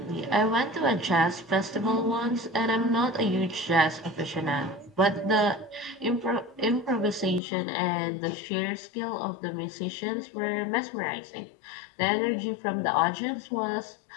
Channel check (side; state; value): right; drops out; at 7.4 s